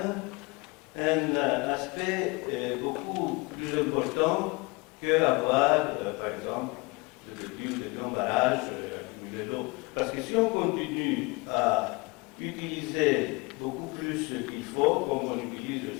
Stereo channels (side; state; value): right; quieter; 27.0 dB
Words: un aspect beaucoup plus important qu'avoir, par exemple, de petits ou de grands barrages accumuler l'eau. Parce que si on continue à utiliser beaucoup plus qu'il faut, comme on utilise